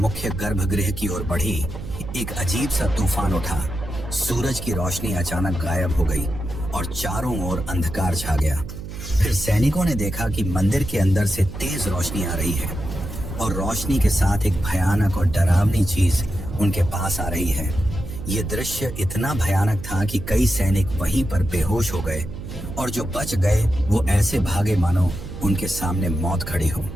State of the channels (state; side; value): noise; right; hum, 10 dB below the sound